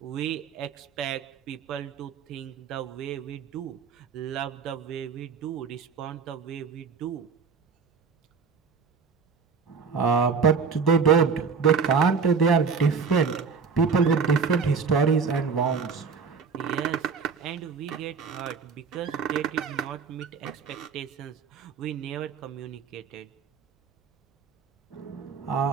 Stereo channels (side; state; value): left; quieter; 5.6 dB